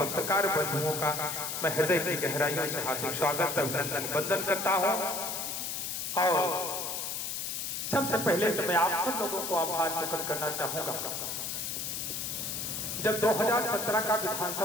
बंधुओं का मैं हृदय की गहराइयों से हार्दिक स्वागत, अभिनंदन, वंदन करता हूं। और सबसे पहले तो मैं आप सब लोगों को आभार प्रकट करना चाहूंगा। जब 2017 का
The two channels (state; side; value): noise; left; hiss, 3 dB below the sound